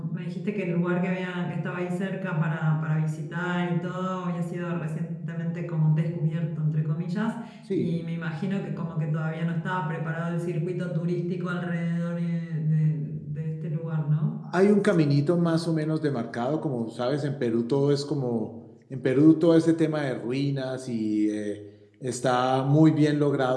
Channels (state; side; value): identical; both; correlation 1.00